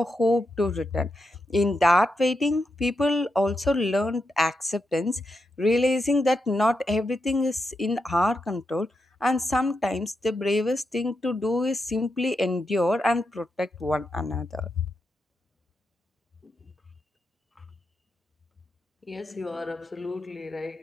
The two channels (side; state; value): both; normal; correlation 0.85